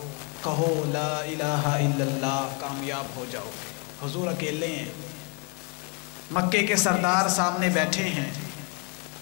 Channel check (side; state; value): right; quieter; 31.3 dB